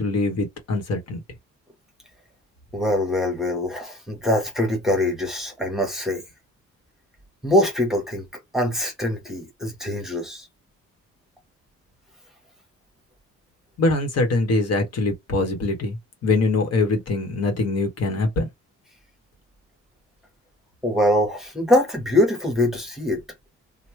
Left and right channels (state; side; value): normal; both; correlation 0.48